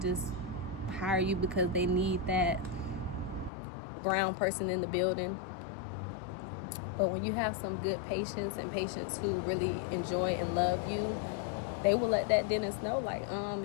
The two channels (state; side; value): drops out; right; at 3.5 s